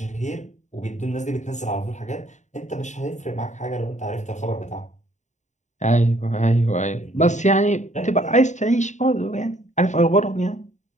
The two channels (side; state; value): right; late; 0.34 ms